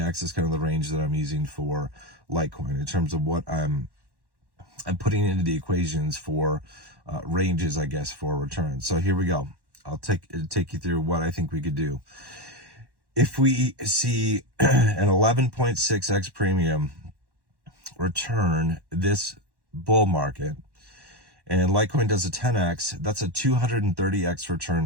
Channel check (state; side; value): late; left; 1.1 ms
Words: is kind of the range that I'm using for Litecoin in terms of what I'm putting into the equations for ranges, I guess, for returns. So here we go. I'll take you through what I think we could do. If we see an 11.6x premium return this bull market, and Litecoin does a 10x, that's a 230x